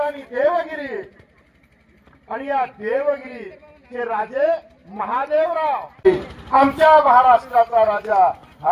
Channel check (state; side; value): identical; both; correlation 1.00